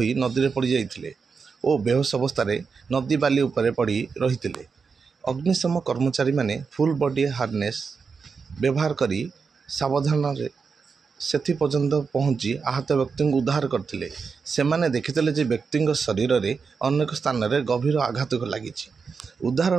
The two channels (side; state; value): left; quieter; 5.3 dB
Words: नदी में पड़ जाइथिले और बेहोश अवस्था नदी बाली उपरे पड़ी रही। अग्निशम कर्मचारी माने फुल बॉडी हार्नेस व्यवहार करी सावधान सेथि पर्यंत पहुंची आहत व्यक्ति को उद्धार करथिले। सेमाने देखिथिले जे व्यक्ति शरीर रे अनेक स्थान रे गभीर आघात लगी। उद्धार